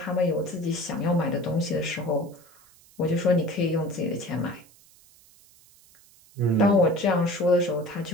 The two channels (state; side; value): noise; right; hiss, 27 dB below the sound